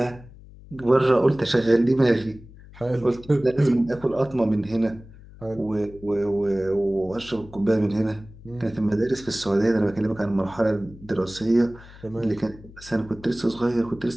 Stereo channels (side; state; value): left; noise; hum, 20 dB below the sound